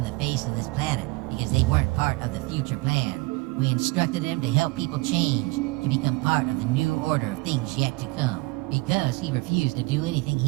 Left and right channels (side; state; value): left; quieter; 23.6 dB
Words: the face of this planet because they weren't part of the future plan. We instructed him to help people change, to become part of the new order of things yet to come. Because he refused to do anything